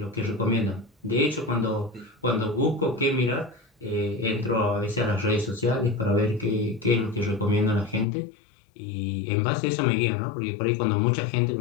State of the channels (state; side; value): drops out; right; at 8.1 s